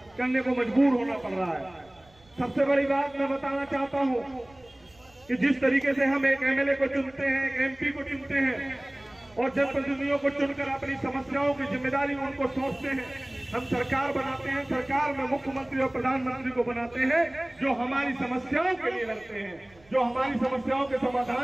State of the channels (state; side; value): noise; right; rumble, 29 dB below the sound